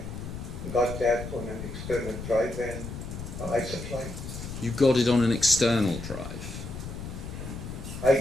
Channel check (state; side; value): noise; left; rumble, 9 dB below the sound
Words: got that on an external drive, and I supplied. You got it on an external drive?